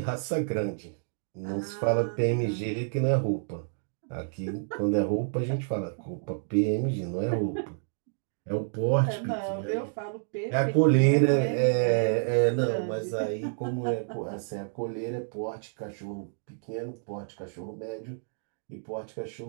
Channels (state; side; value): silent; left; digital silence